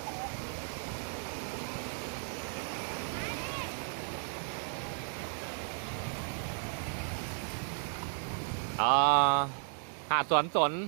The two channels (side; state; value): left; silent; 55 dB below the other